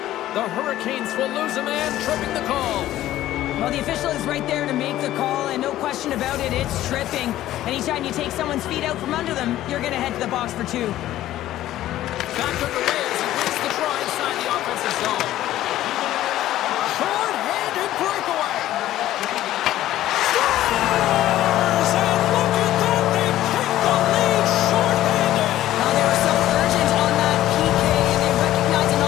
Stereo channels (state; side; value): quieter; right; 13.9 dB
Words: The Hurricanes will lose a man, tripping the call. Well, the official is right there to make the call, and no question about it, it's tripping. Anytime you take someone's feet out from under them, you're going to head to the box for two. Back underway as he wins the draw inside the offensive zone. Short-handed breakaway. Scores! And look at that, they take the lead short-handed. Well, they were so urgent on that PK, and they recognized an